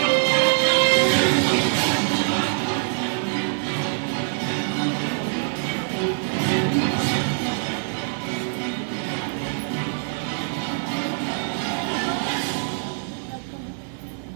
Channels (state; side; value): silent; left; digital silence